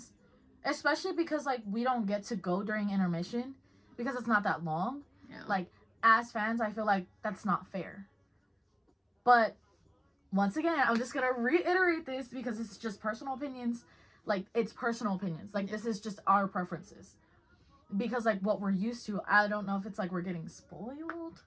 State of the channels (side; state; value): both; identical; correlation 1.00